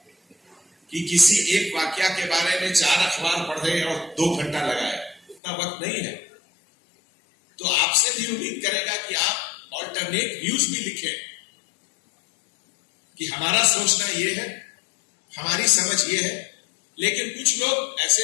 कि किसी एक वाक्या के बारे में 4 अखबार पढ़े और 2 घंटा लगाए? उतना वक्त नहीं है। तो आपसे भी उम्मीद करेगा कि आप ऑल्टरनेट व्यूज भी लिखें कि हमारा सोचना ये है, हमारी समझ ये है, लेकिन कुछ लोग ऐसे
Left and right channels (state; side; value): drops out; right; at 5.4 s